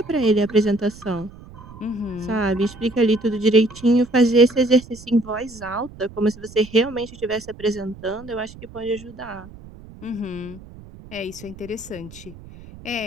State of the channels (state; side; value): noise; right; rumble, 18 dB below the sound